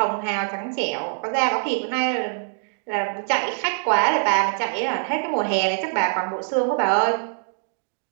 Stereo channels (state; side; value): silent; left; digital silence